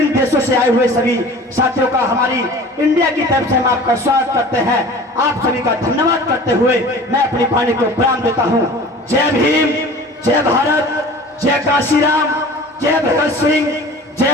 देशों से आए हुए सभी साथियों का हमारी इंडिया की तरफ से हम आपका स्वागत करते हैं। आप सभी का धन्यवाद करते हुए मैं अपनी वाणी को विराम देता हूं। जय भीम, जय भारत, जय कांशीराम, जय भगत सिंह,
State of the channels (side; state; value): both; normal; correlation 0.42